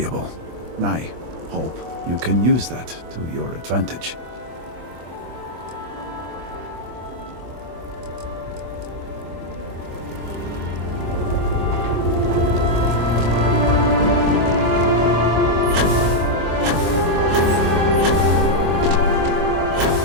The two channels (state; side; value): late; left; 24 ms